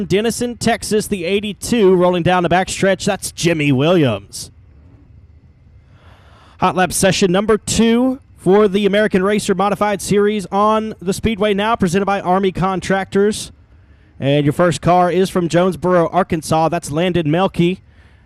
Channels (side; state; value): both; identical; correlation 1.00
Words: Denison, Texas, the 82, rolling down the backstretch. That's Jimmy Williams. Hot Lap Session number 2 for the American Racer Modified Series on the Speedway now, presented by Army Contractors. And your first car is from Jonesboro, Arkansas. That's Landon Melke.